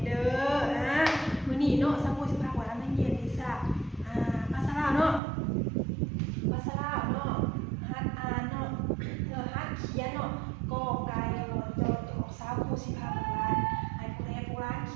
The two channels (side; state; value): left; drops out; at 5.2 s